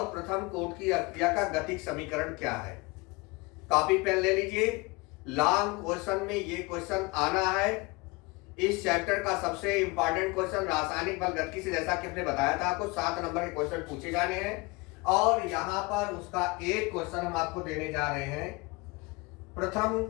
प्रथम कोट की अभिक्रिया का गतिक समीकरण क्या है। कॉपी पेन ले लीजिए। लॉन्ग क्वेश्चन में ये क्वेश्चन आना है। इस चैप्टर का सबसे इंपॉर्टेंट क्वेश्चन रासायनिक बल गतिकी से, जैसा कि हमने बताया था, आपको 7 नंबर के क्वेश्चन पूछे जाने हैं और यहां पर उसका एक क्वेश्चन हम आपको देने जा रहे हैं। प्रथम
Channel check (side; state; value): right; quieter; 25.5 dB